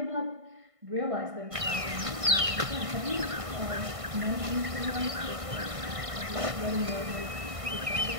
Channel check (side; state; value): left; late; 1.5 ms